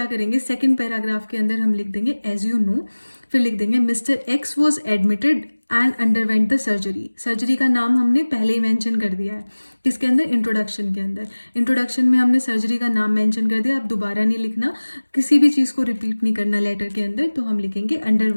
करेंगे, सेकंड पैराग्राफ के अंदर हम लिख देंगे एज यू नो। फिर लिख देंगे mister x was admitted and underwent the surgery. Surgery का नाम हमने पहले ही मेंशन कर दिया है, किसके अंदर, इंट्रोडक्शन के अंदर। इंट्रोडक्शन में हमने सर्जरी का नाम मेंशन कर दिया, अब दोबारा नहीं लिखना, किसी भी चीज़ को रिपीट नहीं करना लेटर के अंदर। तो हम लिखेंगे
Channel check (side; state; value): both; inverted; correlation -1.00